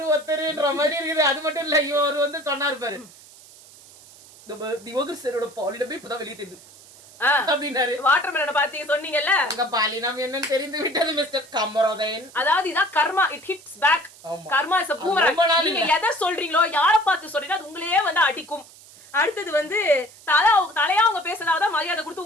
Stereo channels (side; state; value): right; noise; hiss, 22 dB below the sound